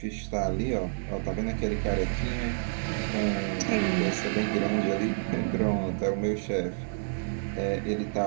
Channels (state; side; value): silent; left; digital silence